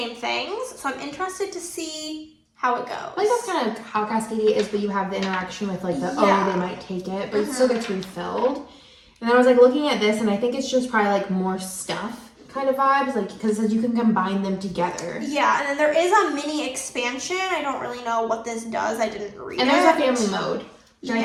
things. So I'm interested to see how it goes. I think that's kind of how Cascadia is, but you have the interaction with like the, oh, they might take it, but it still gets refilled. And then I was like looking at this, and I think it's just probably like more stuff kind of vibes, like because it says you can combine them together. Yeah, and then there is a mini expansion. I don't really know what this does. I didn't read it. And there's a family mode. And I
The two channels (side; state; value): both; identical; correlation 1.00